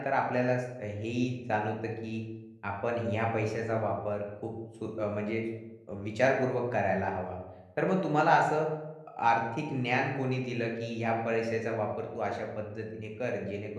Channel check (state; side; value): identical; both; correlation 1.00